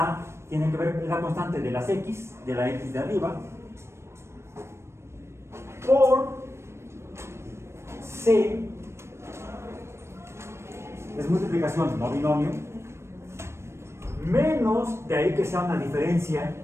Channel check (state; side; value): late; left; 0.13 ms